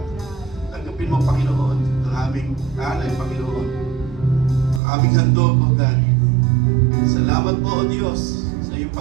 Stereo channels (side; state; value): left; drops out; at 4.8 s